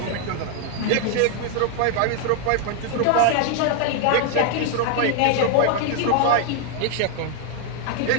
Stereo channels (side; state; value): both; different; correlation 0.00